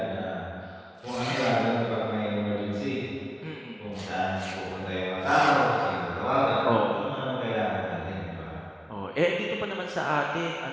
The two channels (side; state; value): both; identical; correlation 1.00